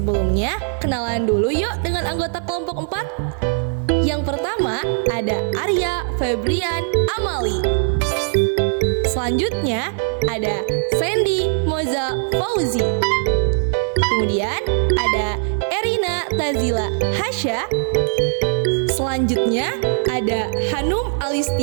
kenalan dulu yuk dengan anggota kelompok 4. Yang pertama ada Arya Febrian Amali. Selanjutnya ada Sandy Moza Fauzi. Kemudian ada Erina Tazila Hasya. Selanjutnya ada Hanum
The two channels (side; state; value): left; silent; 58 dB below the other